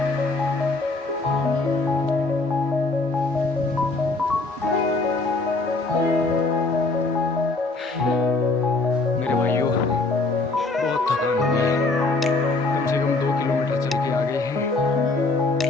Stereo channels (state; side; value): quieter; right; 3.3 dB